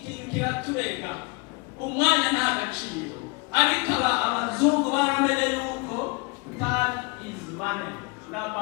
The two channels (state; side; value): quieter; right; 27.8 dB